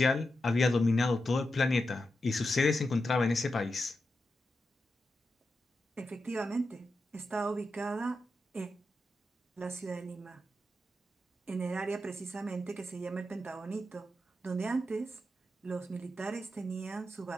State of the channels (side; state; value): both; normal; correlation 0.88